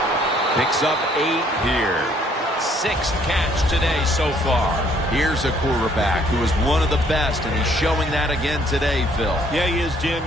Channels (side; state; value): both; normal; correlation 0.64